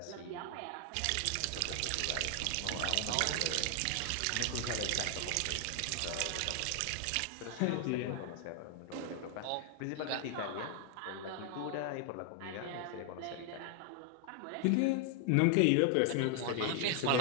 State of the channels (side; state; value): both; different; correlation 0.00